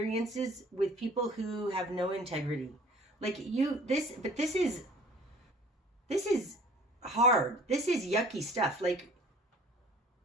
with people who have no integrity. Like this is hard. This is yucky stuff. Like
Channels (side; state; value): both; normal; correlation 0.49